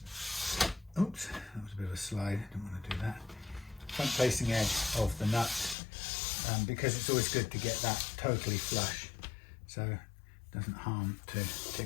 oops, that was a bit of a slide, I didn't want to do that. Front-facing edge of the nut, because it's always good to get that totally flush, so it doesn't harm to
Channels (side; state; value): right; drops out; at 5.8 s